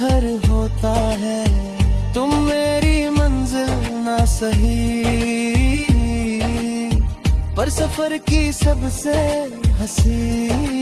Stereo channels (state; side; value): identical; both; correlation 1.00